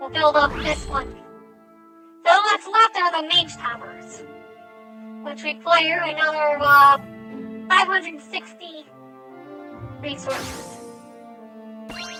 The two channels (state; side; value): identical; both; correlation 1.00